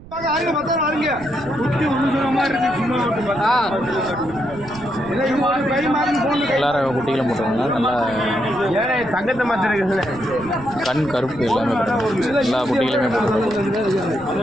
எல்லாரும் குட்டிகளும் போட்டுருங்க. நல்லா தங்கத்தை மாத்திர கண் கருப்பு எல்லாமே எல்லா குட்டிகளுமே போட்டுருங்க.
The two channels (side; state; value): right; noise; rumble, 17 dB below the sound